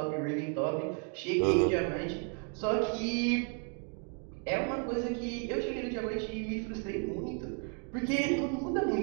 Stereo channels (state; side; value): quieter; left; 38.9 dB